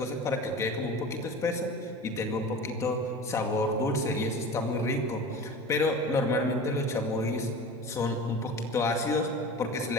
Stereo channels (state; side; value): normal; both; correlation 0.35